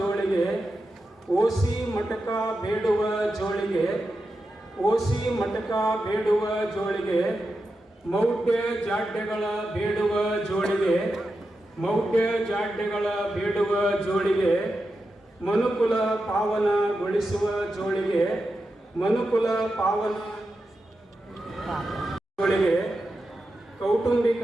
ಓಸಿ ಮಟಕ ಬೇಡುವ ಜೋಳಿಗೆ, ಓಸಿ ಮಟಕ ಬೇಡುವ ಜೋಳಿಗೆ, ಮೌಢ್ಯ ಜಾಡ್ಯಗಳ ಬೇಡುವ ಜೋಳಿಗೆ, ಮೌಢ್ಯ ಜಾಡ್ಯಗಳ ಬೇಡುವ ಜೋಳಿಗೆ, ಮನುಕುಲ ಪಾವನಗೊಳಿಸುವ ಜೋಳಿಗೆ, ಮನುಕುಲ ಪಾವನ ಜೋಳಿಗೆ, ಕೌಟುಂಬಿಕ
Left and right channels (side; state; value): both; normal; correlation 0.89